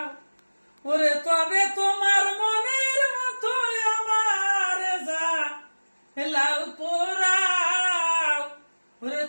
ওরে তবে তোমার মনের মতো আমার যা লাউ পোড়াও, ওরে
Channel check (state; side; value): inverted; both; correlation -1.00